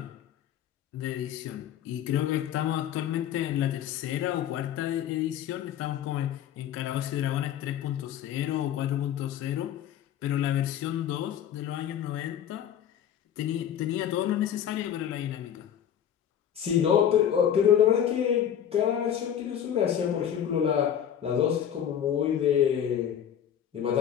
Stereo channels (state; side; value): quieter; right; 9.6 dB